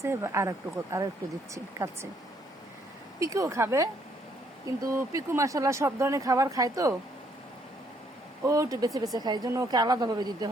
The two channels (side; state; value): both; normal; correlation 0.68